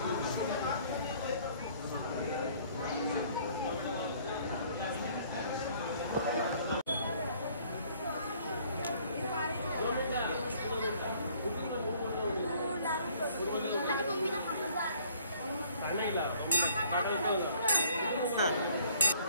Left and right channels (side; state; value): both; inverted; correlation -0.59